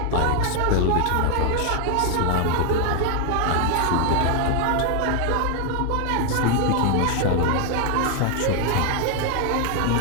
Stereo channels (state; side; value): different; both; correlation 0.00